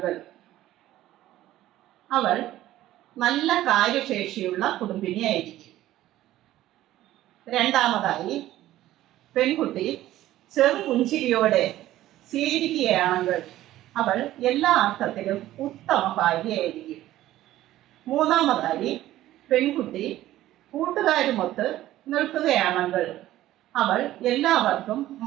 അവൾ നല്ല കാര്യശേഷിയുള്ള കുടുംബിനിയായിരിക്കും. രണ്ടാമതായി, പെൺകുട്ടി ചെറുപുഞ്ചിരിയോടെ സ്വീകരിക്കുകയാണെങ്കിൽ അവൾ എല്ലാ അർത്ഥത്തിലും ഉത്തമ ഭാര്യയായിരിക്കും. മൂന്നാമതായി, പെൺകുട്ടി കൂട്ടുകാരുമൊത്ത് നിൽക്കുകയാണെങ്കിൽ അവൾ എല്ലാവർക്കും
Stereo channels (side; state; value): left; quieter; 14.5 dB